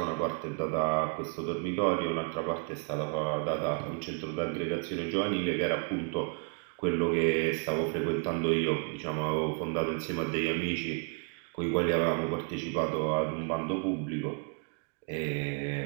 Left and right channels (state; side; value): quieter; left; 38.4 dB